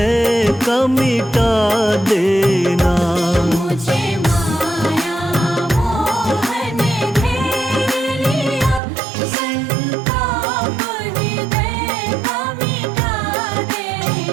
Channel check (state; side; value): drops out; left; at 8.8 s